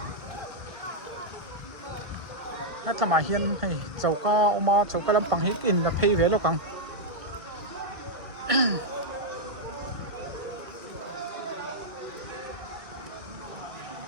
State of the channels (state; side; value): late; left; 1.6 ms